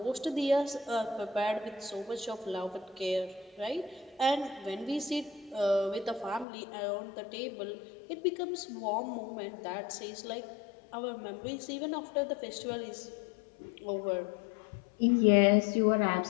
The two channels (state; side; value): drops out; right; at 6.5 s